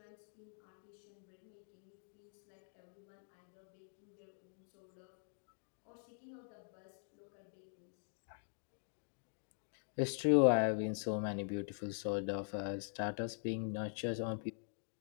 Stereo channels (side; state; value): right; silent; digital silence